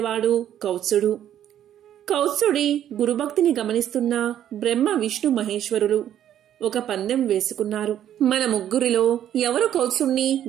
కౌత్సుడు. కౌత్సుడి గురుభక్తిని గమనిస్తున్న బ్రహ్మ, విష్ణు, మహేశ్వరులు ఒక పందెం వేసుకున్నారు. మన ముగ్గురిలో ఎవరు కౌత్సుణ్ణి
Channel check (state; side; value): quieter; left; 10.8 dB